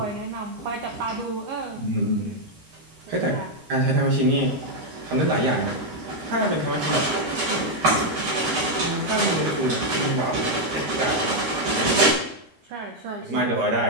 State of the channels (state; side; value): late; left; 13 ms